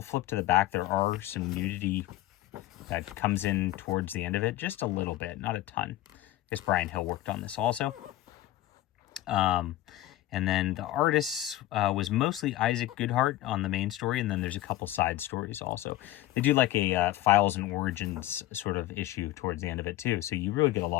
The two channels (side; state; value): right; quieter; 15.3 dB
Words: to flip to the back. There are some nudity that comes in towards the end of it, just a little bit, not a ton. I guess Brian Hill worked on this also. And then the artist was mostly Isaac Goodhart on the main story, and then there's a couple side stories also. They do like a Files and Origins sort of issue towards the end of it too, so you really get a